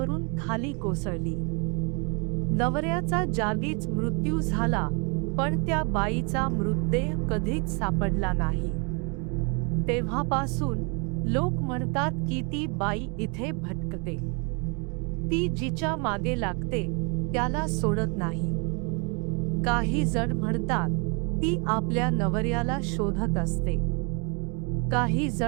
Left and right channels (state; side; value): quieter; left; 34.4 dB